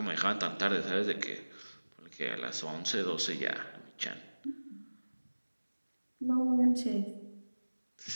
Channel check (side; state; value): both; inverted; correlation -1.00